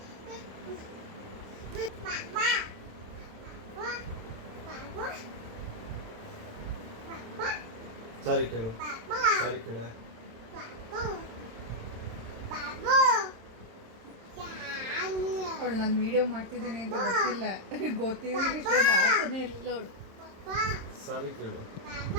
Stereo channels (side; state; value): left; late; 27 ms